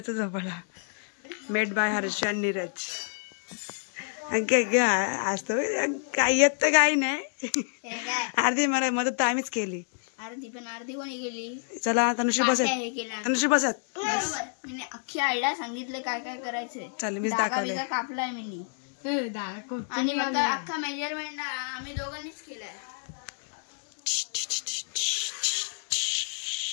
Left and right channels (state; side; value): silent; right; 59 dB below the other